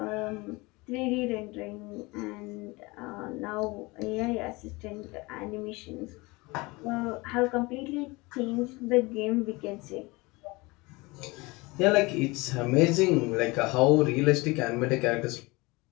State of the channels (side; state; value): right; quieter; 24.0 dB